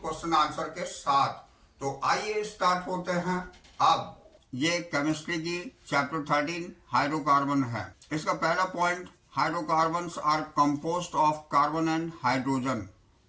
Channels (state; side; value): identical; both; correlation 1.00